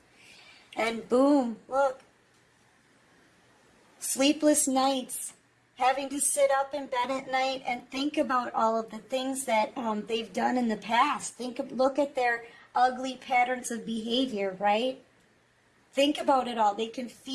And boom, look. Sleepless nights. Having to sit up in bed at night and think about all of the things that they've done in the past. Look at their ugly patterns of behavior, right? Think about it all. They can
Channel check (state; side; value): identical; both; correlation 1.00